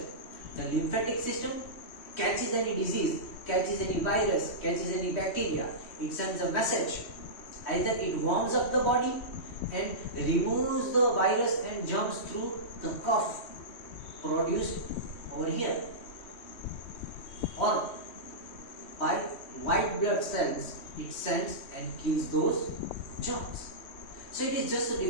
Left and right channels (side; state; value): right; late; 3.1 ms